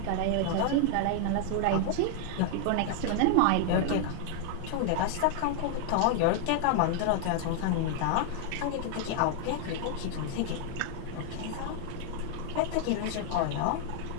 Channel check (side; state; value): both; different; correlation 0.00